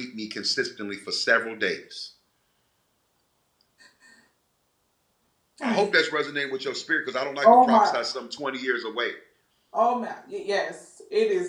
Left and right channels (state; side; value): identical; both; correlation 1.00